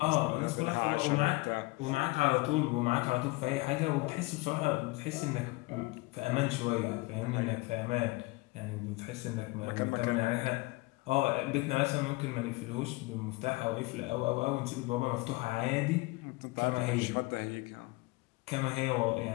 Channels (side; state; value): right; quieter; 23.2 dB